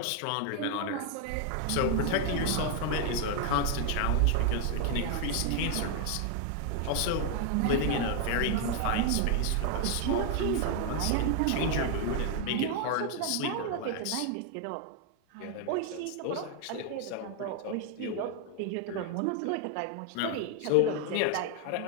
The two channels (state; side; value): different; both; correlation 0.01